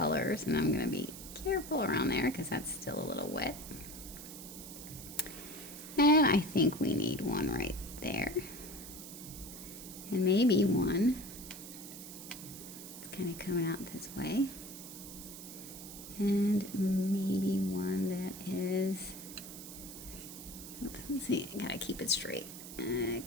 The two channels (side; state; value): right; noise; hiss, 12 dB below the sound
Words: and I'm gonna be careful around there because that's still a little wet. And I think we need one right there. And maybe one, it's kind of coming out this way. And maybe one that is, oops, let's see, I gotta keep it straight.